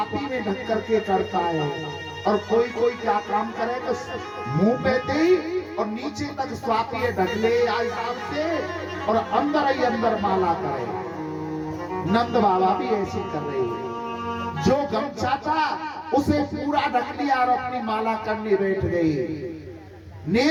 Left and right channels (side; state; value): both; identical; correlation 1.00